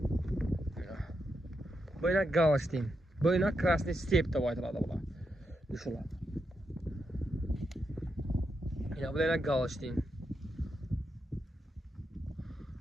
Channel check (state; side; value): normal; both; correlation 0.84